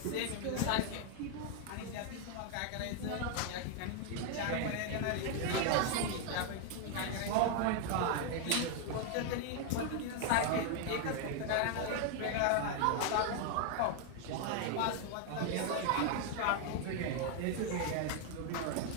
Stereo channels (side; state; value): both; different; correlation 0.01